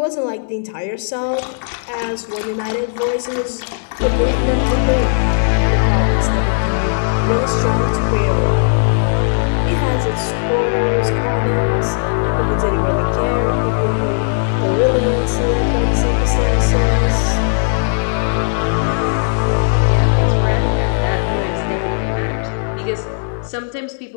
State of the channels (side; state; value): right; silent; digital silence